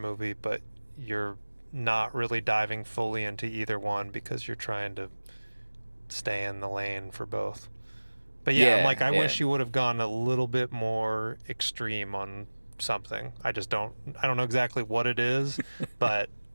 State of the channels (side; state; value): both; inverted; correlation -1.00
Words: but you're not really diving fully into either one because you're trying to stay in the lane for both. But yeah, I'm like, Yeah, I yeah. wish you would have gone a little bit more extreme on something. I don't know exactly what it is, but